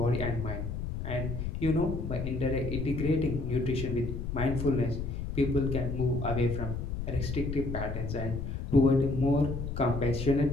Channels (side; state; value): left; noise; rumble, 4 dB below the sound